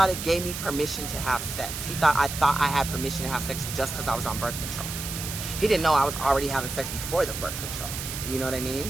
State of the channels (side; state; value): right; noise; hiss, 7 dB below the sound